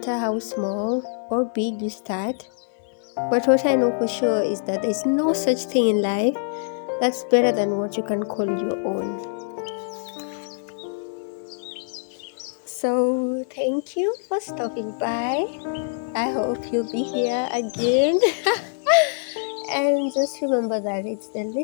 how small or big you start, but what I know for sure is that there's no such thing in life that's better than what you can call your own. So, thank you for stopping by. I hope you'll be here again. And just remember that it's the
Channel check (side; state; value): right; silent; digital silence